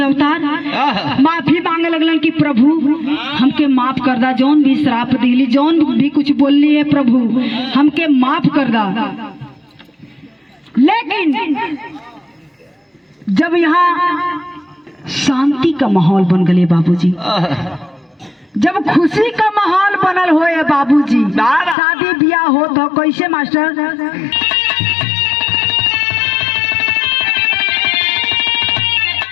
अवतार, माफी मांगे लगलन कि प्रभु हमके माफ कर दा, जौन भी श्राप दिली, जौन भी कुछ बोलनी है प्रभु हमके माफ कर दा। लेकिन जब यहाँ शांति का माहौल बन गए बाबूजी, जब खुशी का माहौल बनल होए बाबूजी, शादी ब्याह हो तो कैसे मास्टर?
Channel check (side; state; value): right; drops out; at 21.8 s